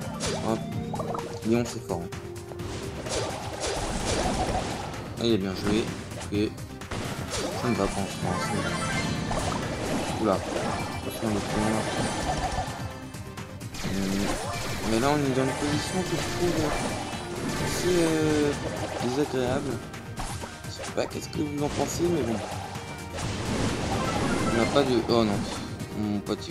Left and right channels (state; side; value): identical; both; correlation 1.00